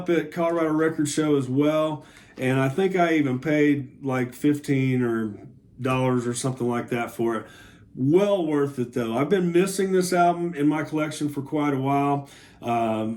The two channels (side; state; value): both; identical; correlation 1.00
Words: at Colorado Record Show as well. And I think I even paid like $15 or something like that for it. Well worth it though. I've been missing this album in my collection for quite a while. I